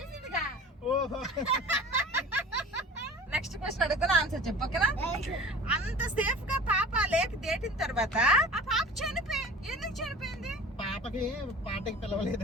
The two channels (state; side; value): normal; both; correlation 0.41